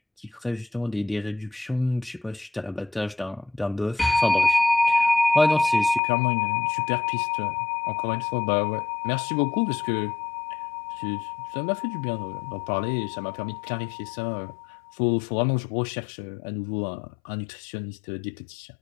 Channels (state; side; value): drops out; right; at 6.0 s